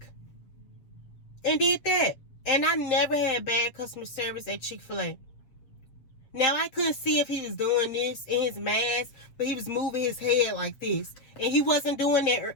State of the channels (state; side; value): late; right; 7.6 ms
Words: And did that. And I never had bad customer service at Chick-fil-A. Now, I couldn't see if he was doing this in his mask, but he was moving his head like this. And he wasn't doing that